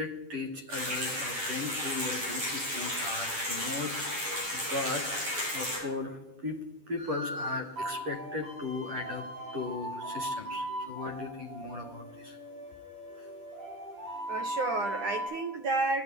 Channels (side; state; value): left; late; 10 ms